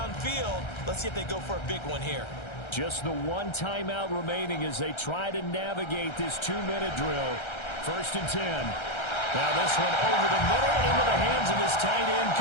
Let's see if they go for a big one here. Just the 1 timeout remaining as they try to navigate this 2-minute drill. 1st and 10. Now this one over the middle into the hands of his tight end,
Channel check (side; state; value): right; late; 1.3 ms